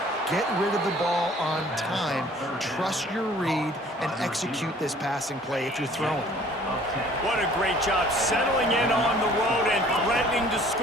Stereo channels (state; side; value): normal; both; correlation 0.54